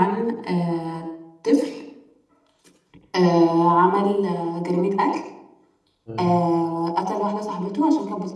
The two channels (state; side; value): identical; both; correlation 1.00